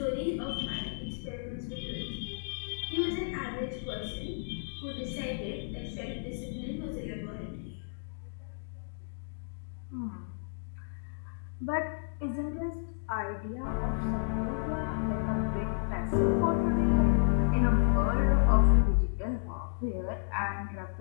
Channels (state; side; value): silent; right; digital silence